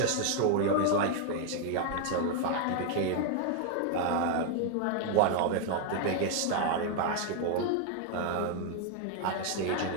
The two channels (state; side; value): different; both; correlation 0.00